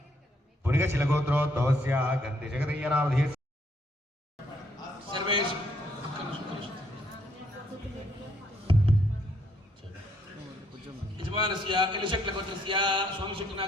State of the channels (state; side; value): normal; both; correlation 0.70